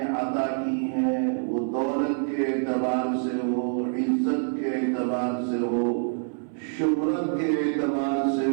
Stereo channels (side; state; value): left; silent; 59 dB below the other